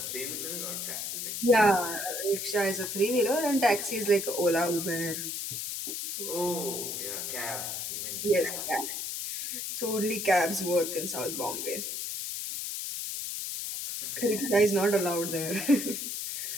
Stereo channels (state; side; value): noise; left; hiss, 4 dB below the sound